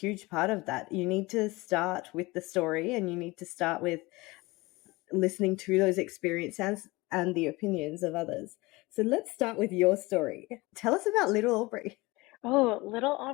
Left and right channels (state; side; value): quieter; right; 22.4 dB